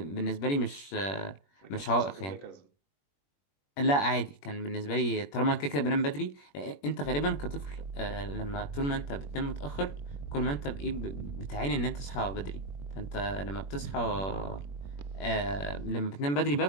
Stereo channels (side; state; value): right; late; 21 ms